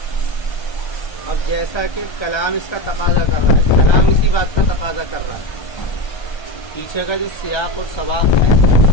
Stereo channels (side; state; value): right; late; 1.3 ms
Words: اب جیسا کہ کلام اس کا تقاضا کر رہا ہے، کلام اسی بات کا تقاضا کر رہا ہے، پیچھے کا جو سیاق اور سباق ہے،